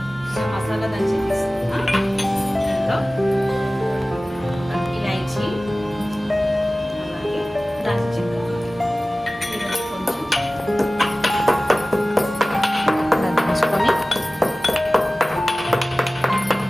మసాలా దంచి తీసుకున్నాం. దీంట్లో ఇలాచీ, అలాగే దాల్చిన చెక్క దంచుకొని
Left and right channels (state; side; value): normal; both; correlation 0.97